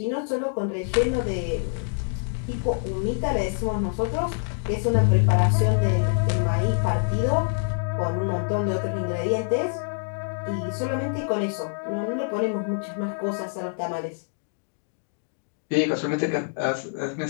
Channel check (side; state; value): right; silent; digital silence